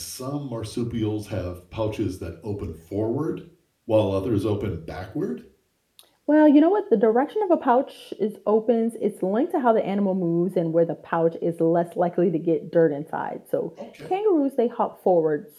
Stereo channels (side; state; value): both; identical; correlation 1.00